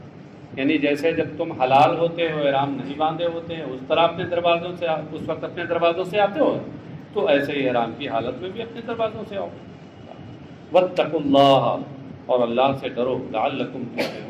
یعنی جیسے جب تم حلال ہوتے ہو، احرام نہیں باندھے ہوتے ہیں، اس طرح اپنے دروازوں سے اس وقت اپنے دروازوں سے آتے ہو، تو ایسے ہی احرام کی حالت میں بھی اپنے دروازوں سے آؤ۔ واتقوا اللہ، اور اللہ سے ڈرو، لعلکم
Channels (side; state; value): both; identical; correlation 1.00